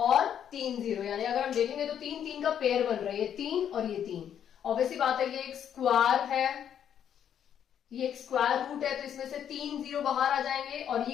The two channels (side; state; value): right; quieter; 9.2 dB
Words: 3 जीरो, यानी अगर हम देखेंगे तो 3 3 का पेयर बन रहा है, ये 3 और ये 3। ऑब्वियसली बात है, ये एक स्क्वायर है, ये एक स्क्वायर रूट है, तो इसमें से 3 जीरो बाहर आ जाएंगे। और